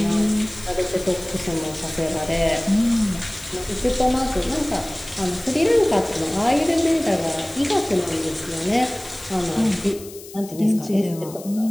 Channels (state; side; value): noise; left; hiss, 17 dB below the sound